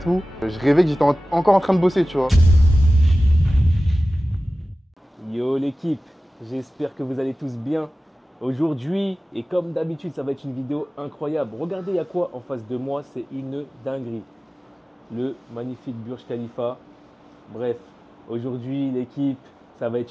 Je rêvais que j'étais encore en train de bosser, tu vois. Yo l'équipe, j'espère que vous allez tous bien. Aujourd'hui, et comme d'habitude, ça va être une vidéo incroyable. Regardez, il y a quoi en face de moi? C'est une dinguerie. Le magnifique Burj Khalifa. Bref, aujourd'hui, l'équipe, ça va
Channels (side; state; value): both; normal; correlation 0.96